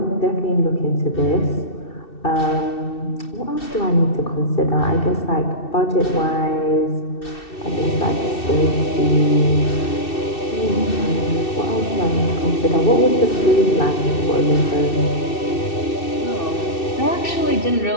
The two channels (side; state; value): right; late; 2.7 ms